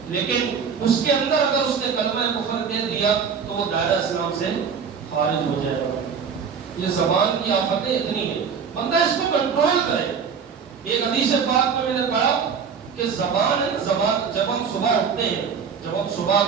لیکن اس کے اندر اگر اس نے کلمہ کفر کہہ دیا تو وہ دائرہ اسلام سے خارج ہو جائے گا. یہ زبان کی آفتیں اتنی ہیں، بندہ اس کو کنٹرول کرے. ایک حدیث پاک میں نے پڑھا کہ زبان جب ہم صبح اٹھتے ہیں، جب ہم صبح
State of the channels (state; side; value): quieter; left; 6.4 dB